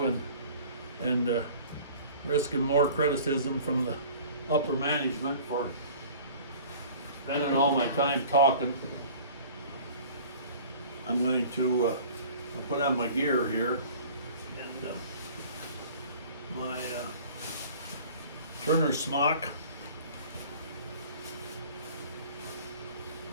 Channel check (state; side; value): inverted; both; correlation -0.46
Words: and risking more criticism from the upper management for spending all my time talking, I'm going to I'll put on my gear here and my Turner smock.